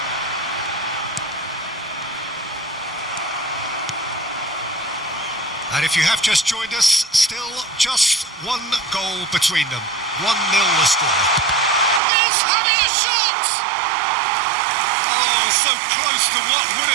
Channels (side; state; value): left; drops out; at 12.0 s